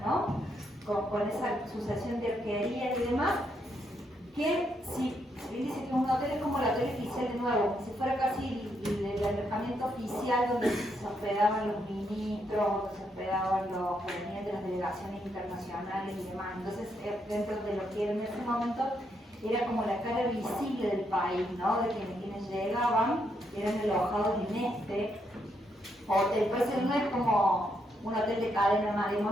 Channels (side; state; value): both; normal; correlation 0.77